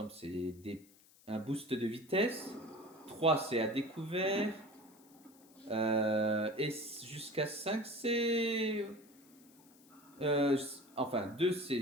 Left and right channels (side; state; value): left; noise; hiss, 27 dB below the sound